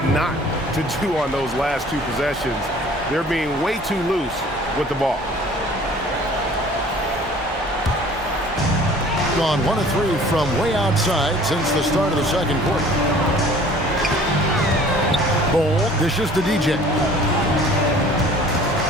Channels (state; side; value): normal; both; correlation 0.50